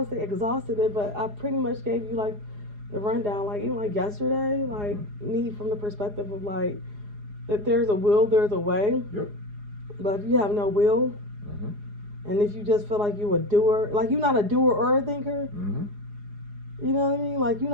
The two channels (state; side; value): late; left; 4.8 ms